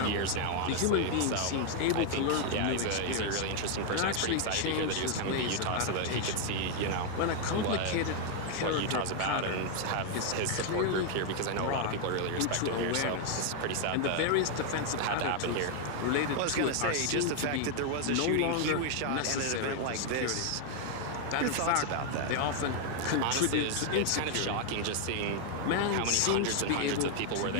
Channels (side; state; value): both; different; correlation 0.01